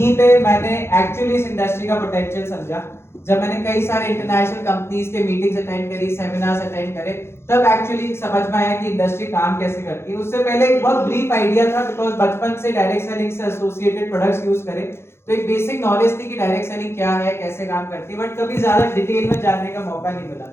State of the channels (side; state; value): right; late; 0.12 ms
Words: पे मैंने एक्चुअली इस इंडस्ट्री का पोटेंशियल समझा। जब मैंने कई सारे इंटरनेशनल कंपनीज के मीटिंग्स अटेंड करी, सेमिनार्स अटेंड करे, तब एक्चुअली समझ में आया कि इंडस्ट्री काम कैसे करती है। उससे पहले एक बहुत ब्रीफ आइडिया था, बिकॉज बचपन से डायरेक्ट सेलिंग से एसोसिएटेड प्रोडक्ट्स यूज करे, तो एक बेसिक नॉलेज थी कि डायरेक्ट सेलिंग क्या है, कैसे काम करती है, बट कभी ज्यादा डिटेल में जानने का मौका नहीं मिला।